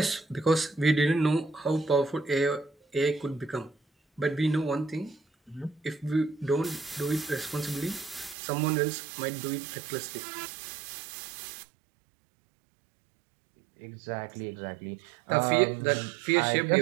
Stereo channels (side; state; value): left; drops out; at 8.3 s